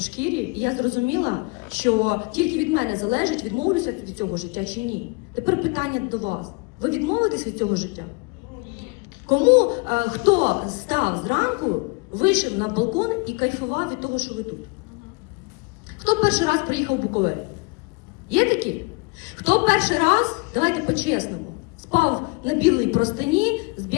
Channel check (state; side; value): quieter; right; 29.7 dB